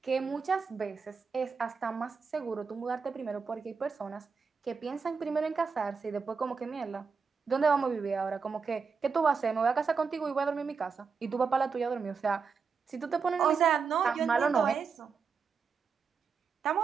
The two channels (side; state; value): left; quieter; 5.4 dB